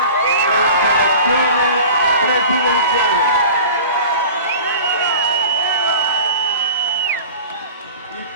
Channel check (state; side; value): inverted; both; correlation -0.39